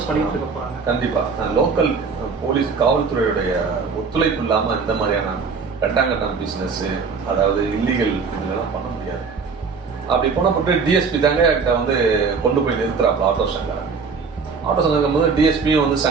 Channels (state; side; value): quieter; left; 5.1 dB